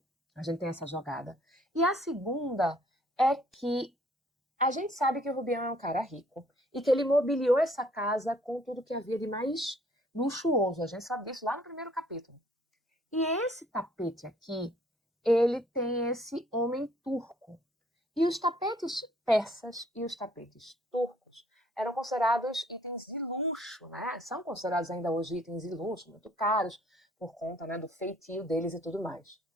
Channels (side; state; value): both; normal; correlation 0.61